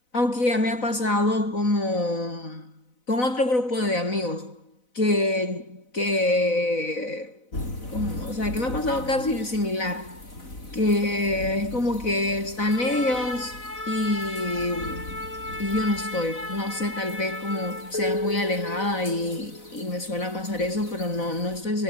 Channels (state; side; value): late; right; 4.0 ms